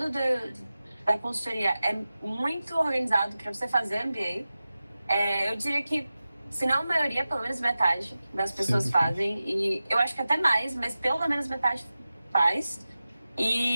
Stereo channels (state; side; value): inverted; both; correlation -0.95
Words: da consultoria é muito organizado para você fazer MBA. Eu diria que, se não a maioria, pelo menos metade das pessoas fazem. E eu acho que até mais, mas pelo menos metade faz.